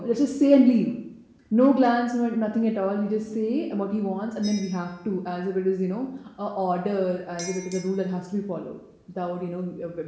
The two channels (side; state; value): both; identical; correlation 1.00